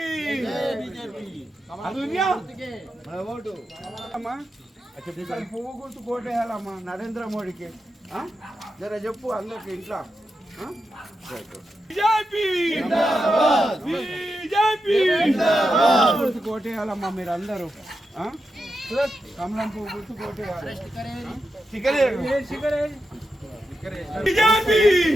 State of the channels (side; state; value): both; normal; correlation 0.88